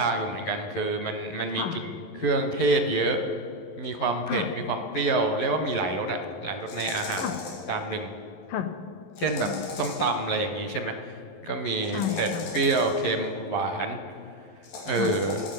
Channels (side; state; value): right; late; 11 ms